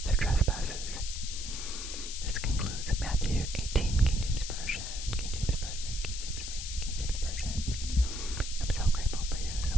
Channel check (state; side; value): noise; left; hiss, 7 dB below the sound